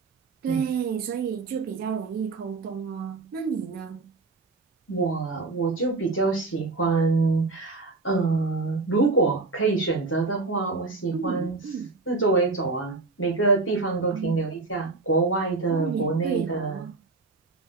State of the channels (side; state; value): left; quieter; 3.7 dB